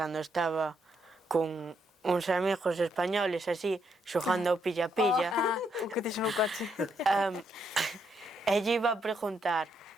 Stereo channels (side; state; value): both; normal; correlation 0.76